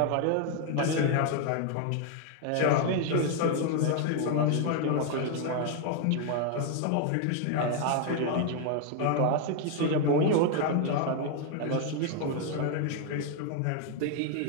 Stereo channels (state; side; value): different; both; correlation 0.00